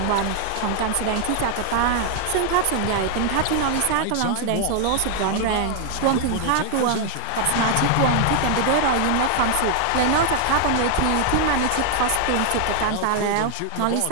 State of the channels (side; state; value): both; different; correlation 0.00